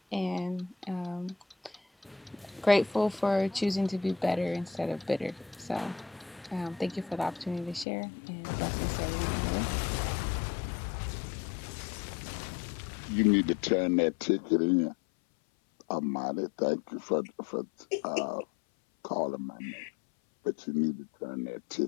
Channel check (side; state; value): right; drops out; at 7.9 s